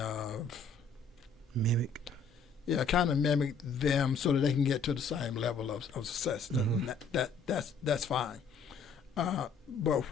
mimic. Yeah, kind of mimic them so that they can get to the same level of success. That's fine. But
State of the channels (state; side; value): quieter; right; 4.7 dB